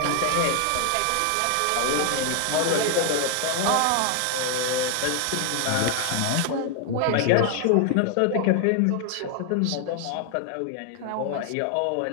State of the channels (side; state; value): both; different; correlation 0.00